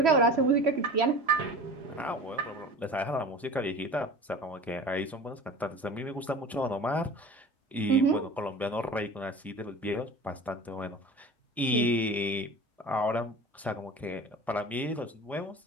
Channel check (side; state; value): both; normal; correlation 0.38